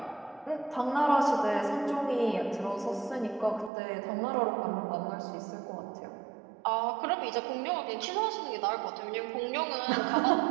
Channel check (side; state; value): left; drops out; at 3.7 s